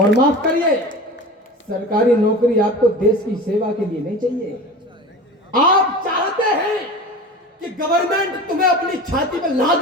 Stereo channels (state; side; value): normal; both; correlation 0.34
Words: माफ करिए, सरकारी नौकरी आपको देश की सेवा के लिए नहीं चाहिए। आप चाहते हैं कि गवर्नमेंट तुम्हें अपनी छाती पर लाद